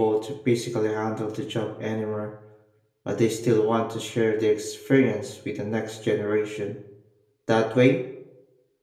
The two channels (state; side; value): identical; both; correlation 1.00